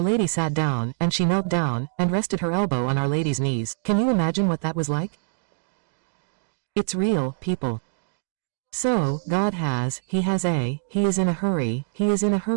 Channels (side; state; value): left; silent; digital silence